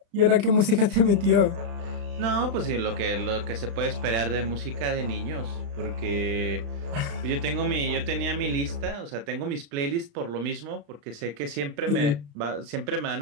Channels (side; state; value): left; late; 35 ms